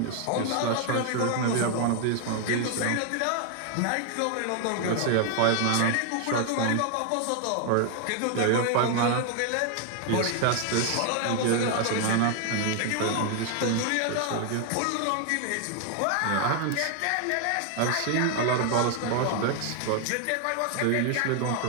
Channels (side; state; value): both; different; correlation 0.00